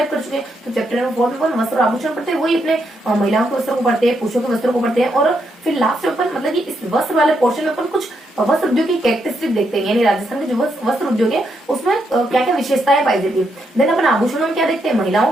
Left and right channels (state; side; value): normal; both; correlation 0.79